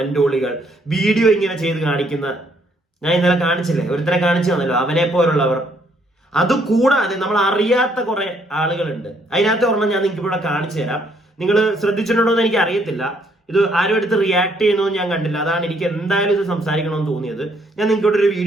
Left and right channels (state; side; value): normal; both; correlation 0.69